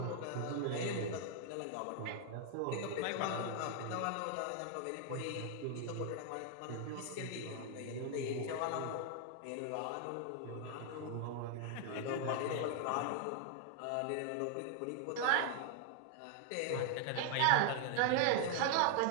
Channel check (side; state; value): both; different; correlation 0.00